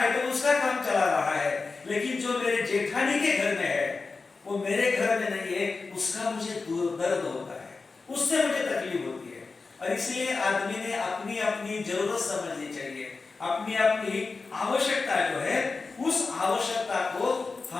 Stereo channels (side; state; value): right; quieter; 4.2 dB